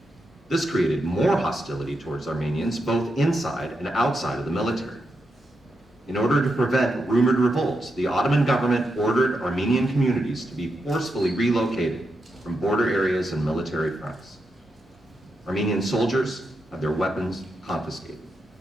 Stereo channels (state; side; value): normal; both; correlation 0.84